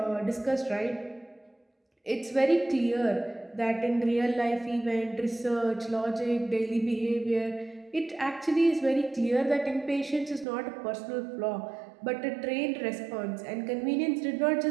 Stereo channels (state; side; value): drops out; left; at 10.5 s